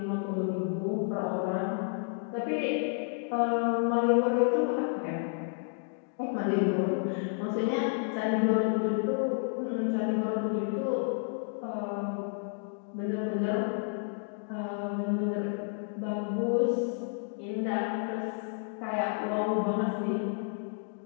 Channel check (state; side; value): silent; right; 56 dB below the other